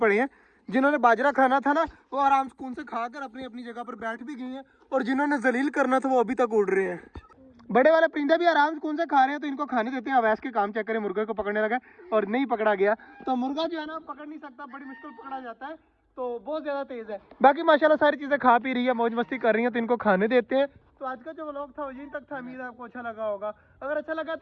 हैं, जिन्होंने बाजरा खाना था ना वो आराम सुकून से खाकर अपनी अपनी जगह पर बैठ भी गए हैं, और जिन्होंने जलील करना था वो अभी तक उड़ रहे हैं। बड़े वाले परिंदे भी आराम सुकून से खा रहे हैं, तो इनको खाने देते हैं। अवैस के काम चेक करें, मुर्गे को पकड़ने लगा और नहीं पकड़ा गया। तो मुर्गा जो है ना पकड़ नहीं सकता, बड़ी मुश्किल पकड़ा जाता है, तो बहुत ज्यादा तेज है। बाकी माशाल्लाह सारी चीजें खा पी रही है, मौज मस्ती कर रही है, तो इनको खाने देते हैं। तो आज का जो व्लॉग था वो यहीं तक था। उम्मीद है आपको अच्छा लगा होगा। अगर अच्छा लगा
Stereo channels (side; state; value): both; identical; correlation 1.00